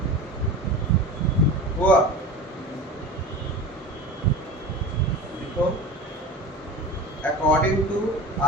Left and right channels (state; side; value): normal; both; correlation 0.32